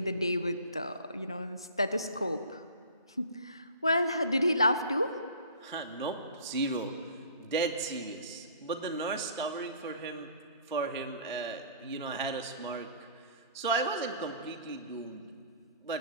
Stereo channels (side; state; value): both; inverted; correlation -0.48